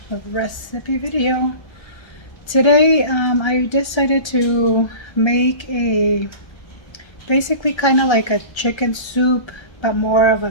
recipe video. Today I decided to make a basically kind of like a chicken soup, but more of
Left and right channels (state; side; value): late; right; 1.3 ms